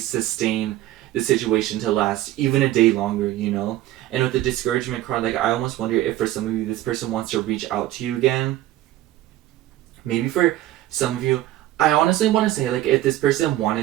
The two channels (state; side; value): quieter; left; 14.8 dB